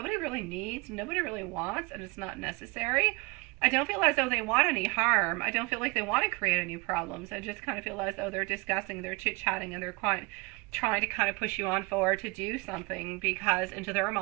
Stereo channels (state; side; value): quieter; left; 25.7 dB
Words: really needs, nobody really wants, and it's not necessary. I don't feel as though they want any harm. I don't feel like they want to create any problems. I just kind of feel as though they're discussing, they're chit-chatting, and they're quite trying to kind of push you on forward to do something, because into their